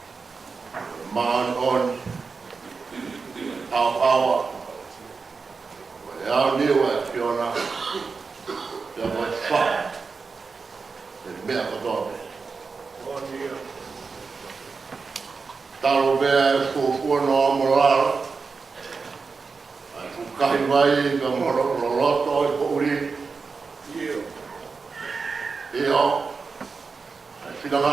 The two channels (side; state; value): left; quieter; 4.7 dB